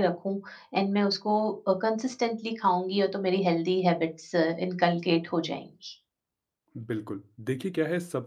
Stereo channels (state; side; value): identical; both; correlation 1.00